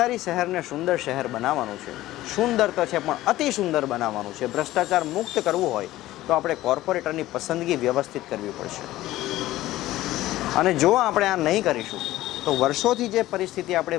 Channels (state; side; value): quieter; right; 15.9 dB